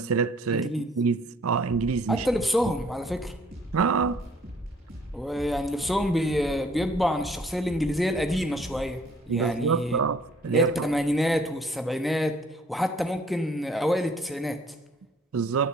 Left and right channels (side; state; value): both; normal; correlation 0.59